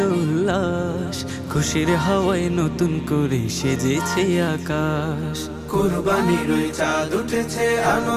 উল্লাস, খুশির হাওয়ায় নতুন করে সেজেছে আকাশ। কুরবানির চাঁদ উঠেছে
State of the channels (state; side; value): identical; both; correlation 1.00